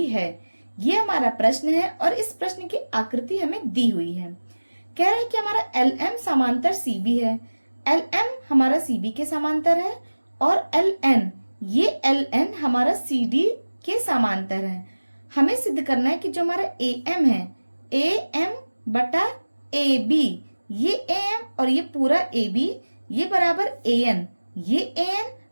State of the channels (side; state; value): both; inverted; correlation -1.00